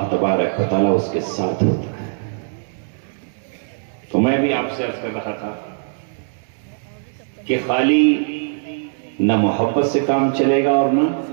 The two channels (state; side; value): silent; left; digital silence